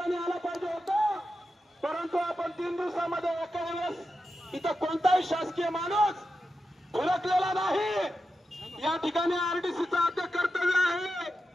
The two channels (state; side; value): normal; both; correlation 0.89